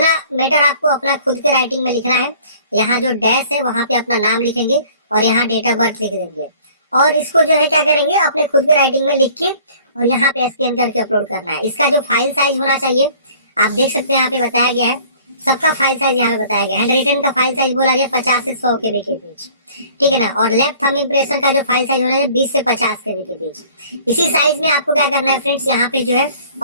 मैटर आपको अपना खुद के राइटिंग में लिखना है। यहाँ जो डैश है वहां पे अपना नाम लिखेंगे, और यहाँ डेट ऑफ बर्थ लिख देंगे, और इसको जो है क्या करेंगे अपने खुद के राइटिंग में लिख के और यहाँ पे स्कैन करके अपलोड करना है। इसका जो फाइल साइज होना चाहिए आप देख सकते हैं, यहाँ पे बताया गया है सबका फाइल साइज यहाँ पे बताया गया। हैंड रिटन का फाइल साइज बोला गया 50 से 100 KB के बीच, ठीक है ना। और लेफ्ट थंब इम्प्रेशन का जो फाइल साइज होना है 20 से 50 KB के बीच। इसी साइज में आपको क्या करना है फ्रेंड्स, यहाँ पे जो है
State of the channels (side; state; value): both; inverted; correlation -0.52